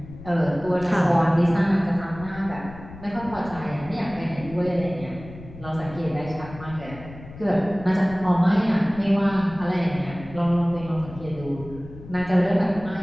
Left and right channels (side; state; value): left; noise; rumble, 16 dB below the sound